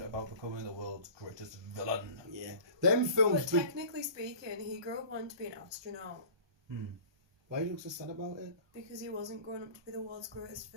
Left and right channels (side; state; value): left; late; 1.2 ms